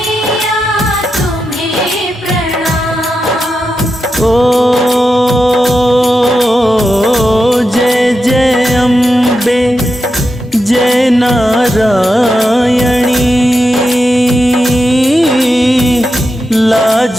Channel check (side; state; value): both; normal; correlation 0.88